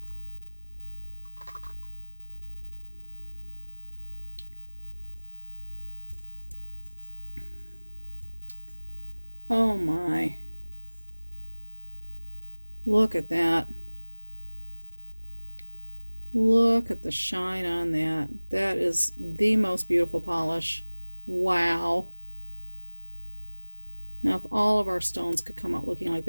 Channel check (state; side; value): inverted; both; correlation -1.00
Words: Oh my. Look at that. Look at the shine on that. That is the most beautiful polish. Wow. Now, if all of our stones could come out looking like